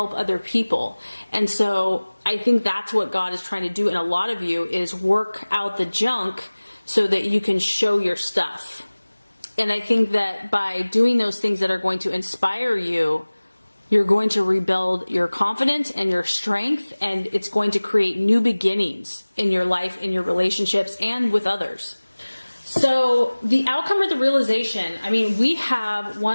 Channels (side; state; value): both; inverted; correlation -1.00